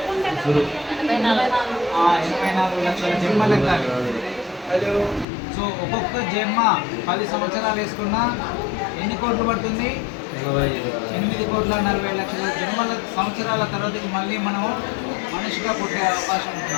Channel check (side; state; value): right; drops out; at 5.2 s